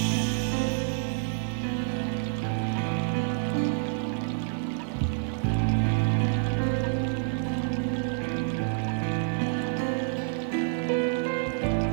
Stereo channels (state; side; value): silent; left; digital silence